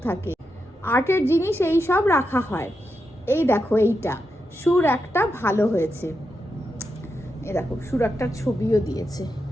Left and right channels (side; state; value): both; normal; correlation 0.86